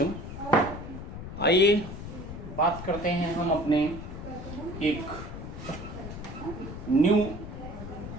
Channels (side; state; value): left; noise; rumble, 9 dB below the sound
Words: आइए बात करते हैं हम अपने एक न्यू